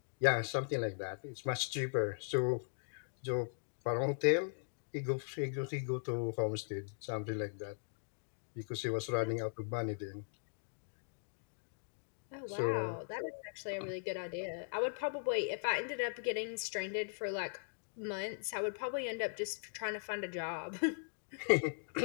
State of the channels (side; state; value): right; silent; digital silence